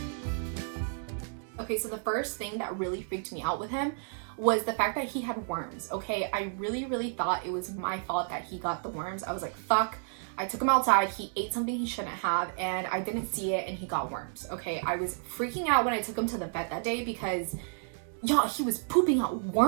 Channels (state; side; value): silent; left; 57 dB below the other